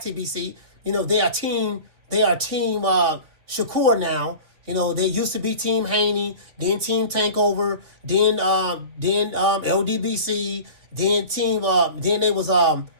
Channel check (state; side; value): late; left; 3.2 ms